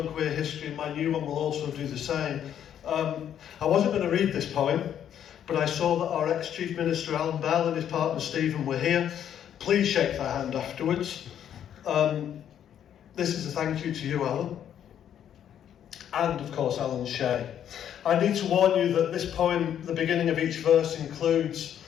queer history, and my new one will also do the same. I wasn't going to read this poem, but I saw that our ex-Chief Minister Alan Bell and his partner Stephen were here. Please shake their hand afterwards. This is a thank you to you, Alan, and of course Alan Shea. I need to warn you that this poem, the beginning of each verse, includes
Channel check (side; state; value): right; quieter; 9.7 dB